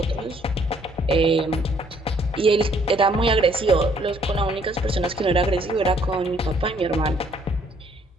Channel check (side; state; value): both; normal; correlation 0.64